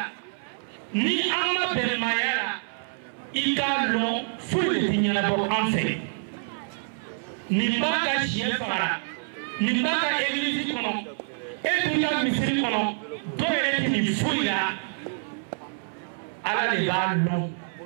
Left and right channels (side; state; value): left; silent; 58 dB below the other